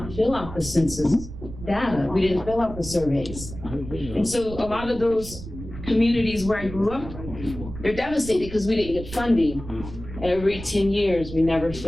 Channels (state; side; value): noise; right; rumble, 11 dB below the sound